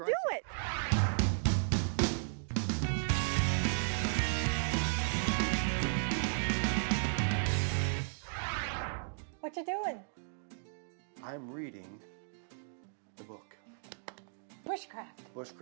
it. What you doing? I'm reading the book. Bushcraft.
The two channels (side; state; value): left; silent; digital silence